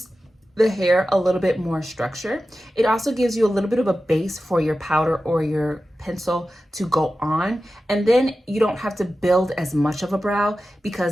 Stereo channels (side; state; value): both; normal; correlation 0.93